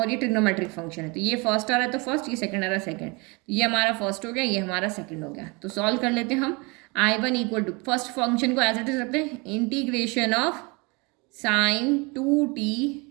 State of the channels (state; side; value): quieter; left; 28.2 dB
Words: ये ट्रिग्नोमेट्रिक फंक्शन है, तो ये फर्स्ट आ रहा है तो फर्स्ट, ये सेकंड आ रहा है सेकंड, तो ये हमारा फर्स्ट हो गया, ये हमारा सेकंड हो गया। तो सॉल्व कर लेते हैं हम। I1 equal to first function को एज इट इज रखते हैं, integration of sine 2t